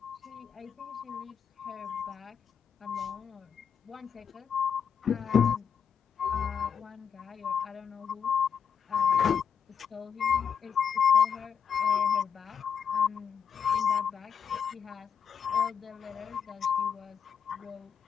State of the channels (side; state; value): right; quieter; 7.2 dB